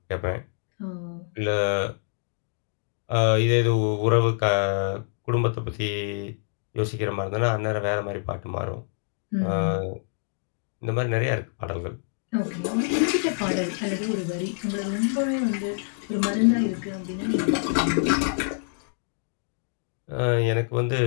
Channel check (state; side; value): silent; right; digital silence